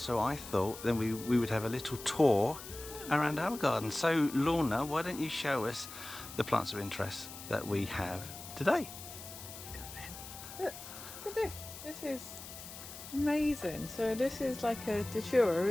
I thought then we would have a little tour around our garden. So Lorna, why don't you show us the plants of interest that we have today? Look at this. This is amazing. So this is like a datura,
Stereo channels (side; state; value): left; noise; hiss, 13 dB below the sound